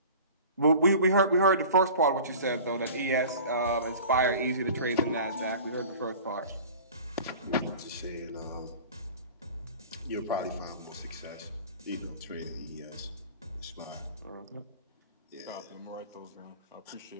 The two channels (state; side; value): inverted; both; correlation -0.41